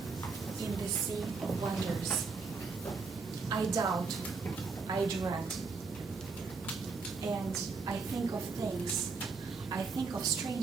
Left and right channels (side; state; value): left; quieter; 4.7 dB